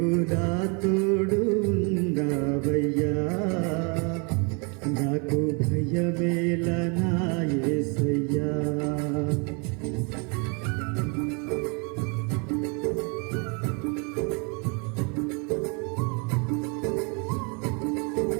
నా తోడు ఉన్నావయ్యా. నాకు భయమేలా నా యేసయ్యా.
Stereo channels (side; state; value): left; quieter; 33.7 dB